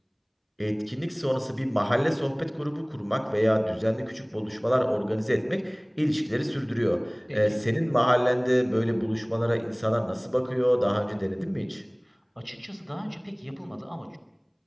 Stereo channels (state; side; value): identical; both; correlation 1.00